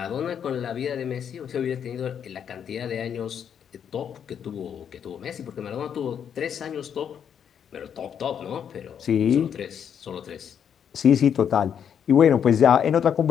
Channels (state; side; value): quieter; right; 8.3 dB